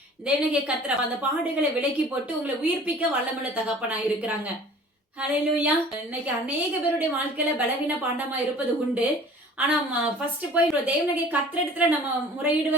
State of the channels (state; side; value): normal; both; correlation 0.47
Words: தேவனாகிய கர்த்தர் அந்த பாடுகளை விலக்கி போட்டு உங்களை உயிர்ப்பிக்க வல்லமுள்ள தகப்பனா இருக்கிறாங்க. ஹல்லேலூயா. இன்னைக்கு அநேக பேருடைய வாழ்க்கையில பலவீன பாண்டமா இருப்பது உண்டு. ஆனா ஃபர்ஸ்ட் போய் தேவனாகிய கர்த்தரிடத்துல நம்ம